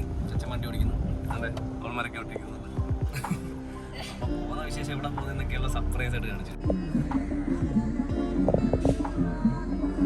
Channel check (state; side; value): identical; both; correlation 1.00